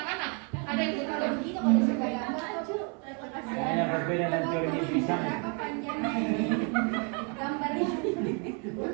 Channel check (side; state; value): left; quieter; 37.3 dB